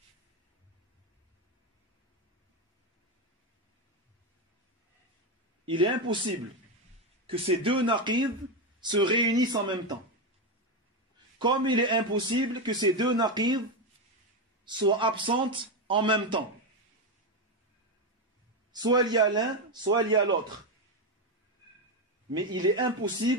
Il est impossible que ces deux naqid se réunissent en même temps. Comme il est impossible que ces deux naqid soient absentes en même temps. Soit il y a l'un, soit il y a l'autre. Mais il est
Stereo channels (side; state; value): both; normal; correlation 0.10